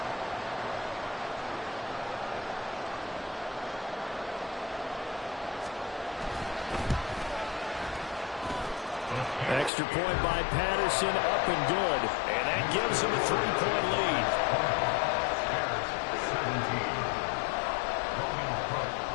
Extra point by Patterson, up and good. And that gives him a 3-point lead.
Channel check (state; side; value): drops out; right; at 9.7 s